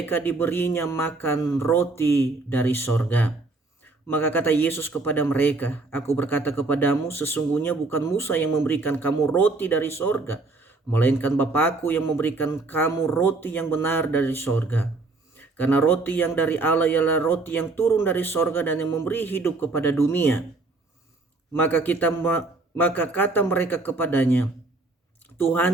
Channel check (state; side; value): quieter; left; 3.3 dB